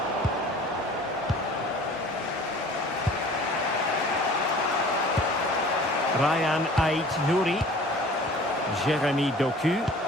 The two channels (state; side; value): normal; both; correlation 0.46